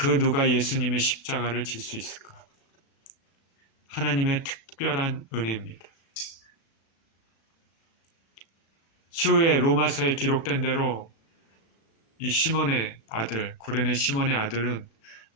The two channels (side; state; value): right; late; 36 ms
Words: 누가 예수님의 십자가를 질 수 있을까? 하나님의 특별한 은혜입니다. 추후에 로마서에 기록된 대로 이 시몬의 아들, 구레네 시몬의 아들은